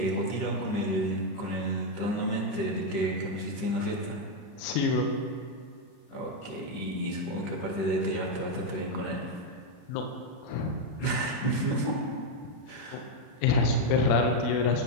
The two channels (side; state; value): right; late; 40 ms